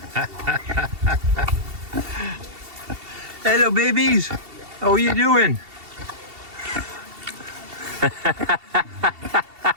Hello, babies. How are you doing?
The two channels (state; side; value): late; left; 2.7 ms